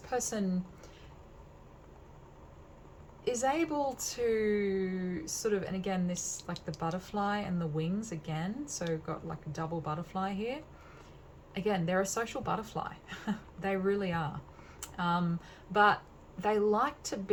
is able to sort of, and again, this like the butterfly and the wings again, so got like a double butterfly here. Again, they're a social butterfly. They really are. But they like to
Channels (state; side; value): identical; both; correlation 1.00